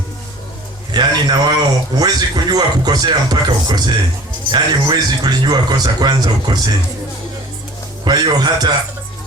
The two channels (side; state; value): both; normal; correlation 0.45